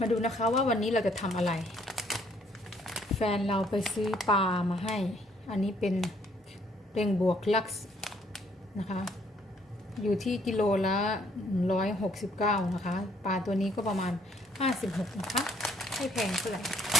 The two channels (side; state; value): both; normal; correlation 0.65